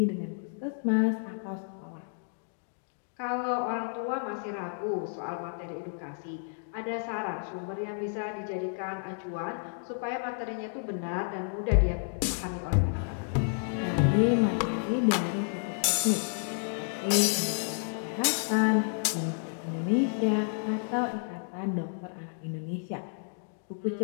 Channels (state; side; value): silent; right; digital silence